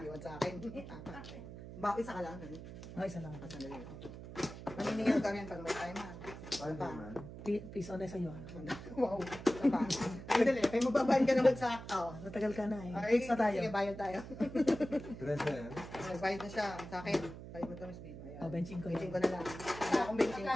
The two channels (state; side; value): noise; right; hum, 12 dB below the sound